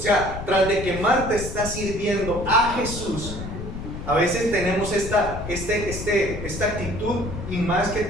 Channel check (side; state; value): left; noise; rumble, 8 dB below the sound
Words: tras de que Marta está sirviendo a Jesús, a veces tenemos esta actitud, y más que